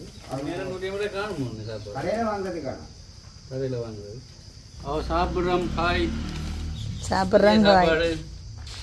காணும் சாப்பாடு கடையில் வாங்குறது காணும். கடையில் வாங்குறது. சாப்பிட்றோம் காய் சாப்பிட்றாங்க சாப்பாடு.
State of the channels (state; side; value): identical; both; correlation 1.00